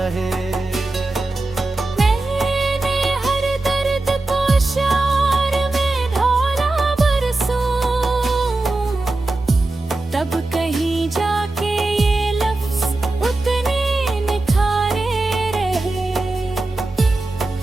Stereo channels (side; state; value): left; quieter; 3.0 dB